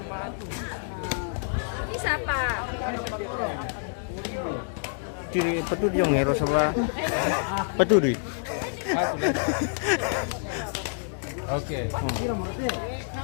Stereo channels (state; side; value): silent; right; digital silence